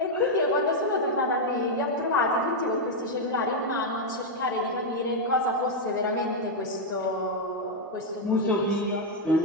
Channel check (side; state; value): both; normal; correlation 0.00